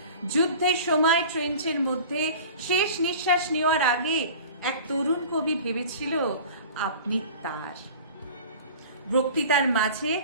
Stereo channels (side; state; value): both; inverted; correlation -0.40